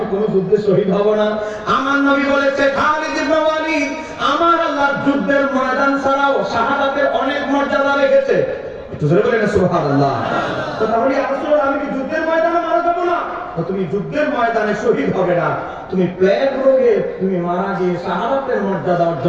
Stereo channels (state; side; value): identical; both; correlation 1.00